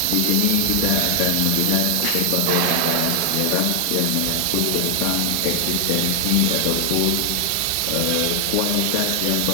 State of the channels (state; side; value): different; both; correlation 0.00